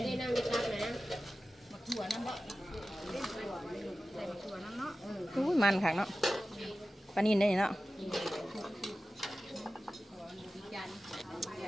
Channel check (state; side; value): normal; both; correlation 0.95